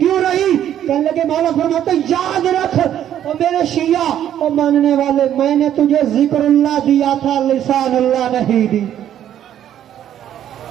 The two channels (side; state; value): left; quieter; 10.8 dB